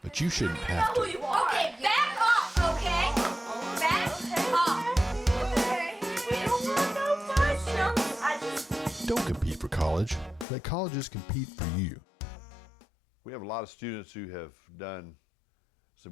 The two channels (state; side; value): drops out; right; at 10.5 s